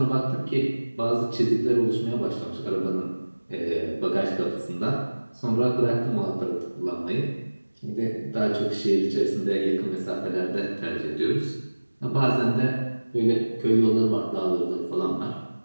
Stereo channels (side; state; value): both; inverted; correlation -1.00